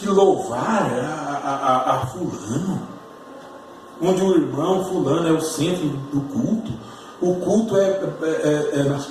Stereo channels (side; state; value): both; identical; correlation 1.00